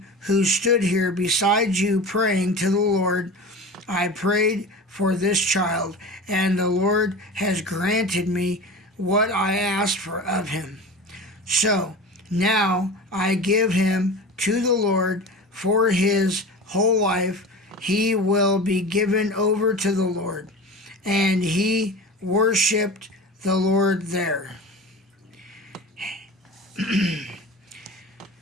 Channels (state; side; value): normal; both; correlation 0.32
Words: who stood here beside you praying to the Lord. I prayed for this child, and the Lord has granted me what I asked for of him. So now I give him to the Lord for his whole life. He will be given over to the Lord. And he worshipped the Lord there.